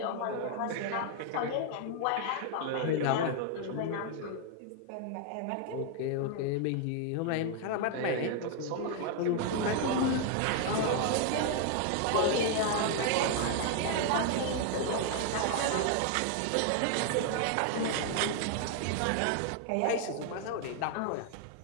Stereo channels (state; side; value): different; both; correlation 0.00